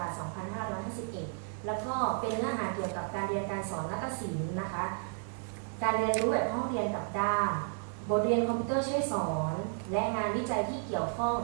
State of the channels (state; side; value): silent; left; 56 dB below the other